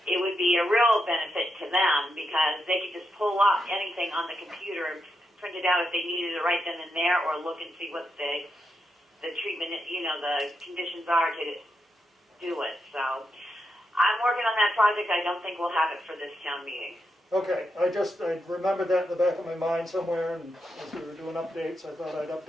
It would be a real benefit to them, because they could just pull up anything on the computer and print it out if they needed it right then and there, or look and see what the treatment, the conditions are to do it. So I'm working on that project. I don't think we'll have it for this town meeting. Okay, I remembered that in the back of my mind somewhere, and as we were doing updates, I thought I'd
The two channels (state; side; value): normal; both; correlation 0.84